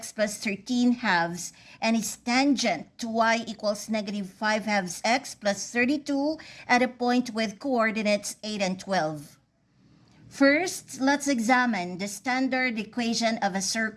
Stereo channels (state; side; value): identical; both; correlation 1.00